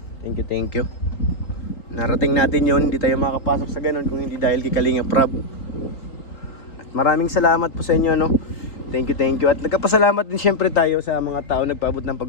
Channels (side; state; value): right; late; 3.8 ms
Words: Thank you. Narating natin yun, hindi tayo makapasok sa ganun kung hindi dahil kay Kalinga Prab. At maraming salamat po sa inyo, Thank you. At nagkapasalamat din syempre tayo sa mga tao nagpaabot ng